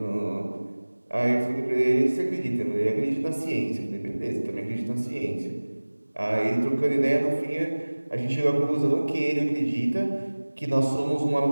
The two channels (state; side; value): inverted; both; correlation -1.00